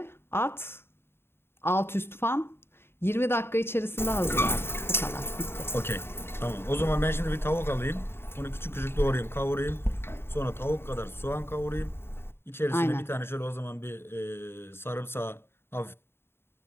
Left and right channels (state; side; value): late; right; 0.11 ms